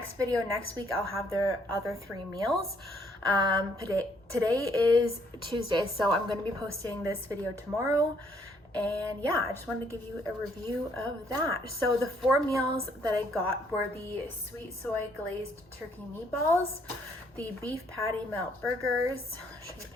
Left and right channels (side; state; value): both; normal; correlation 0.67